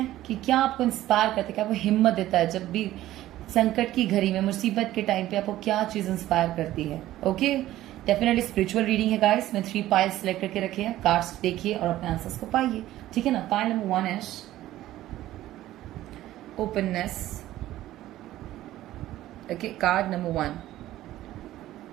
कि क्या आपको इंस्पायर करता है, क्या आपको हिम्मत देता है जब भी संकट की घड़ी में, मुसीबत के टाइम पे आपको क्या चीज इंस्पायर करती है। ओके, डेफिनेटली स्पिरिचुअल रीडिंग है गाइस। मैं 3 पाइल्स सेलेक्ट करके रखे हैं, कार्ड्स देखिए और अपने आंसर्स को पाइए। ठीक है ना? Pile number 1 is openness. Okay, card number 1,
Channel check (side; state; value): left; quieter; 14.6 dB